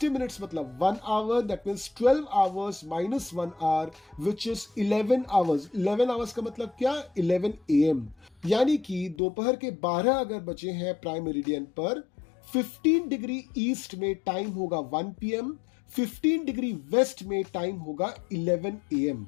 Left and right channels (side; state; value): right; drops out; at 9.2 s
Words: मिनट्स मतलब 1 hour, that means 12 hours - 1 hour which is 11 hours. 11 hours का मतलब क्या? 11 AM, यानी कि दोपहर के 12 अगर बजे हैं प्राइम मेरिडियन पर, 15 डिग्री ईस्ट में टाइम होगा 1 PM, 15 डिग्री वेस्ट में टाइम होगा 11 AM।